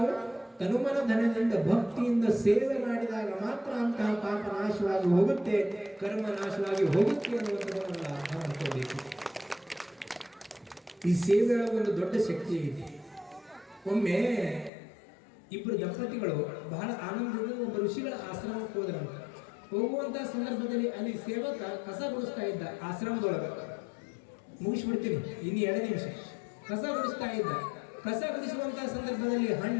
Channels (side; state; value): right; drops out; at 14.7 s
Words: ತನುಮನ ಧನದಿಂದ ಭಕ್ತಿಯಿಂದ ಸೇವೆ ಮಾಡಿದಾಗ ಮಾತ್ರ ಅಂತಹ ಪಾಪ ನಾಶವಾಗಿ ಹೋಗುತ್ತೆ, ಕರ್ಮ ನಾಶವಾಗಿ ಹೋಗುತ್ತೆ ಅನ್ನುವಂಥದ್ದನ್ನು ಅರ್ಥ ಮಾಡ್ಕೋಬೇಕು. ಈ ಸೇವೆಯ ಒಂದು ದೊಡ್ಡ ಶಕ್ತಿ ಇದೆ. ಒಮ್ಮೆ ಇಬ್ಬರು ದಂಪತಿಗಳು ಬಹಳ ಆನಂದದಿಂದ ಒಬ್ಬ ಋಷಿಗಳ ಆಶ್ರಮಕ್ಕೆ ಹೋದ್ರಂತೆ. ಹೋಗುವಂತಹ ಸಂದರ್ಭದಲ್ಲಿ ಅಲ್ಲಿ ಸೇವಕ ಕಸ ಗುಡಿಸ್ತಾ ಇದ್ದ ಆಶ್ರಮದೊಳಗೆ. ಮುಗಿಸ್ಬಿಡ್ತೀನಿ, ಇನ್ನು 2 ನಿಮಿಷ. ಕಸ ಗುಡಿಸ್ತಾ ಇದ್ದ. ಕಸ ಗುಡಿಸುವಂತಹ ಸಂದರ್ಭದಲ್ಲಿ